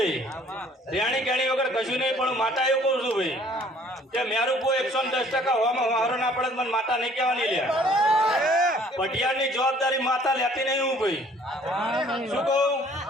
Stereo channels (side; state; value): both; normal; correlation 0.57